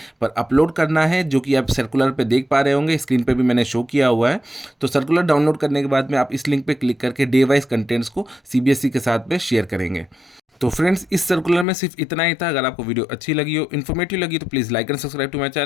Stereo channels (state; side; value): drops out; right; at 11.7 s